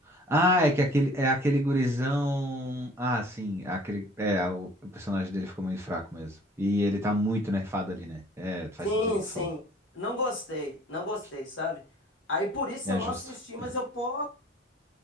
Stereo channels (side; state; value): both; normal; correlation 0.53